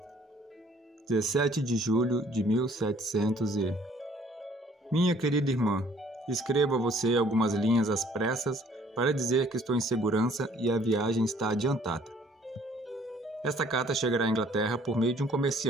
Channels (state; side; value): normal; both; correlation 0.59